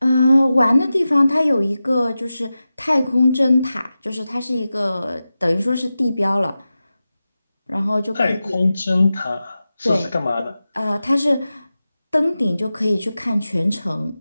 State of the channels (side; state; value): both; inverted; correlation -0.94